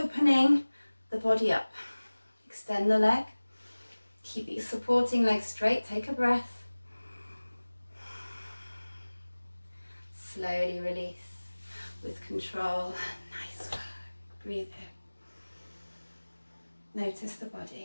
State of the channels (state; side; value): inverted; both; correlation -1.00